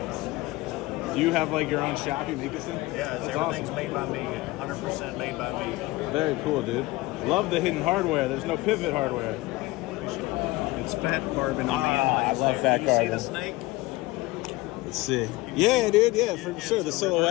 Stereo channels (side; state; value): right; quieter; 20.3 dB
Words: Do you have like your own shop you make this in? Yeah, That's everything's awesome. made by me. 100% made by me. Very cool, dude. Love the hidden hardware. There's no pivot hardware. It's fat carbon. I love fat You carbon. see the snake? Let's see. Yeah, dude. Yeah, for sure. The